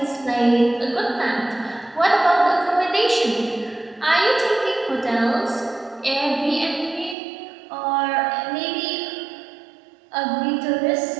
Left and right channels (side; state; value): left; drops out; at 7.2 s